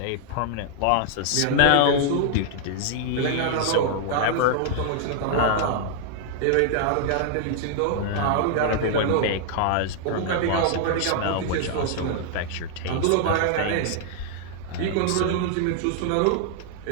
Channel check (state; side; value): different; both; correlation 0.00